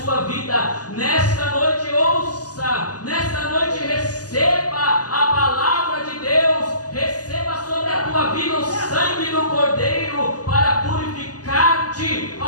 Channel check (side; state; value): right; late; 0.68 ms